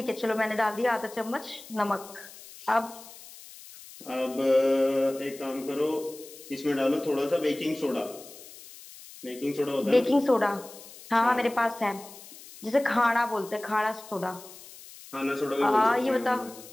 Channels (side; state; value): left; noise; hiss, 18 dB below the sound